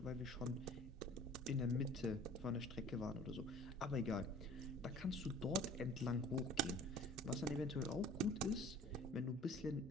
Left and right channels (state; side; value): normal; both; correlation 0.48